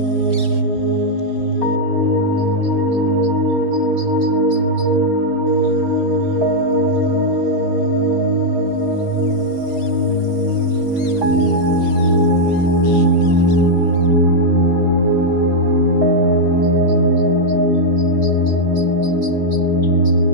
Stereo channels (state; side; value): late; left; 4.3 ms